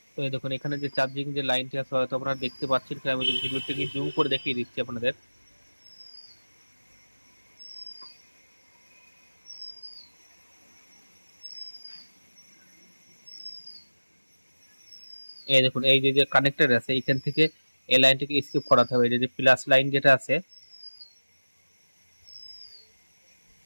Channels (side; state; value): both; inverted; correlation -1.00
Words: তো এই দেখুন এখানে যে চার্জিং যে লাইনটি আছে হয়তো আপনারা দেখতে পাচ্ছেন, আমি ভিডিওটিকে জুম করে দেখিয়ে দিচ্ছি আপনাদের। এই দেখুন এই যে যে কানেক্টর আছে এখান থেকে এই লাইনটিকে স্কিপ করাতে হবে, এই যে প্লাস লাইন যেটা আছে